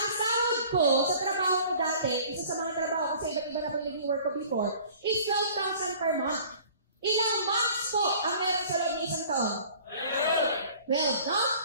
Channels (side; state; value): both; inverted; correlation -0.49